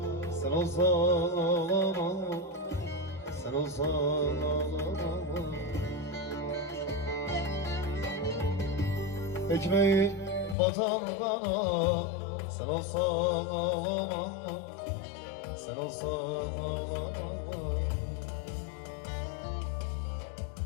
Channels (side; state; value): right; drops out; at 10.6 s